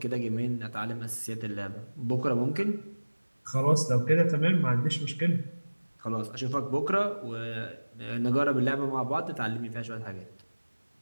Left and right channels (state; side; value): inverted; both; correlation -1.00